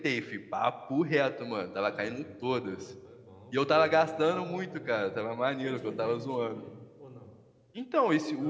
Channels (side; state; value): both; identical; correlation 1.00